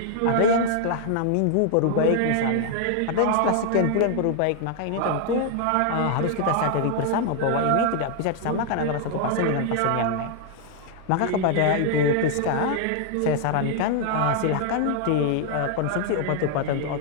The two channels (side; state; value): both; different; correlation 0.00